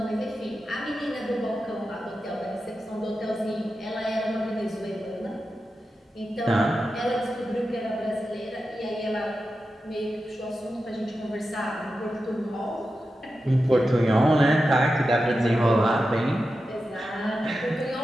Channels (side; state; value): both; normal; correlation 0.91